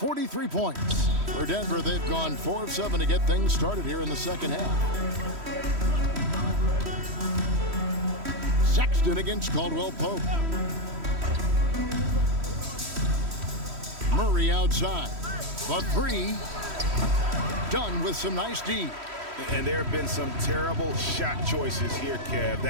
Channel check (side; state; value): left; late; 3.1 ms